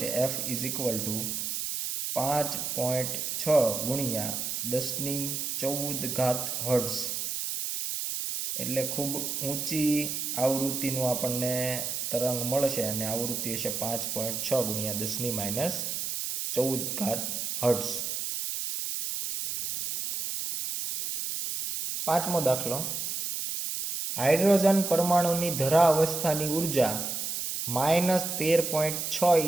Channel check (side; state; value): right; noise; hiss, 3 dB below the sound